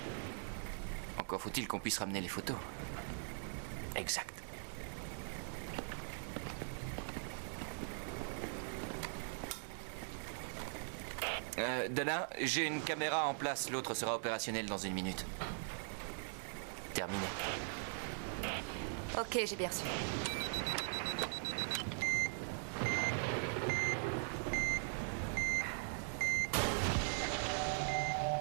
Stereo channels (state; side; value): silent; left; digital silence